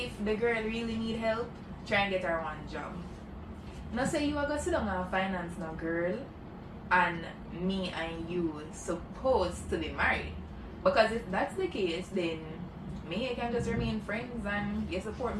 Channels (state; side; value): identical; both; correlation 1.00